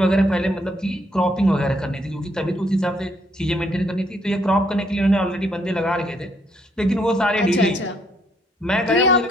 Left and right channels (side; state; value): both; normal; correlation 0.70